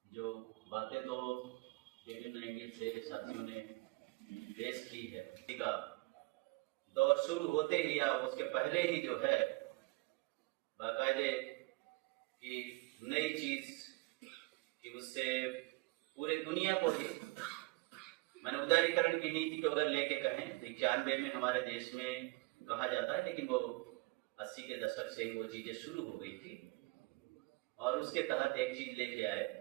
जो बातें तो विभिन्न एंगल से साथियों ने पेश की है, का दौर शुरू होते ही या उसके पहले ही जो है बाकायदे की नई चीज कि उससे पूरे दुनिया को ही मैंने उदारीकरण की नीति को अगर लेके कहें तो 91 में हमारे देश में कहा जाता है, लेकिन वो 80 के दशक से वो चीजें शुरू हो गई थी और उसके तहत एक चीज लेके आए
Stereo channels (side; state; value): left; quieter; 24.0 dB